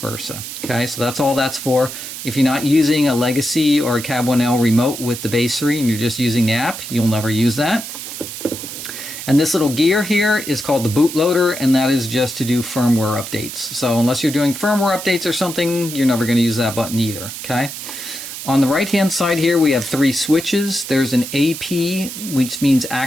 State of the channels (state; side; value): noise; right; hiss, 9 dB below the sound